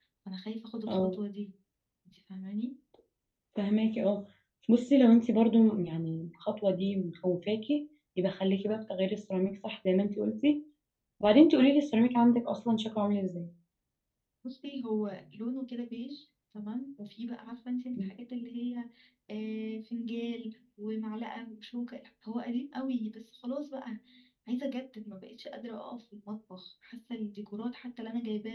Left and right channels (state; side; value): identical; both; correlation 1.00